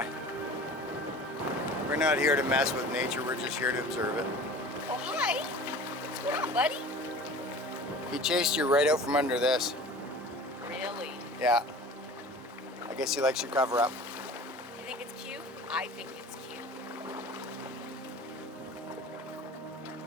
We're not here to mess with nature, we're just here to observe it. Oh, hi. What's going on, buddy? He chased you right out from under this. Really? Yeah. I guess he likes your cover up. You think it's cute? I think it's cute.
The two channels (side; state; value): both; normal; correlation 0.41